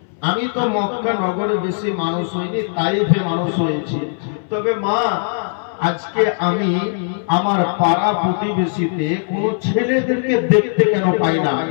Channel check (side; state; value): right; silent; 64 dB below the other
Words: আমি তো মক্কা নগরে বেশি মানুষ হইনি, তাইফে মানুষ হয়েছি। তবে মা, আজকে আমি আমার পাড়া প্রতিবেশীতে কোন ছেলেদেরকে দেখতে কেন পাই না?